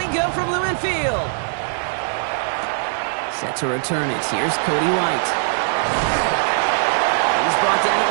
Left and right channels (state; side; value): silent; left; digital silence